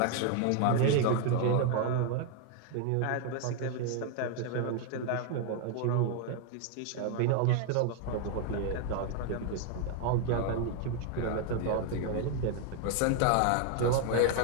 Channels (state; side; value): different; both; correlation 0.00